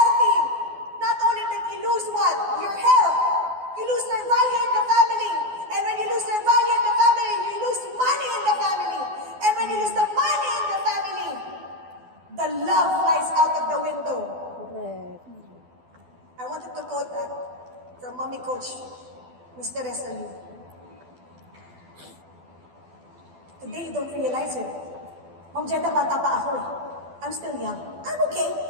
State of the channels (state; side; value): late; left; 12 ms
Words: not only that you lose what? Your health. You lose their value in the family. And when you lose their value in the family, you lose money in the family. And when you lose the money in the family, the love flies out of the window. Correct. I wanted to quote that from Mommy Coach, Mr. Resalu. Today, you don't realize it. Ma'am Jeda, bata pa ako eh. I'm still young. I'm okay.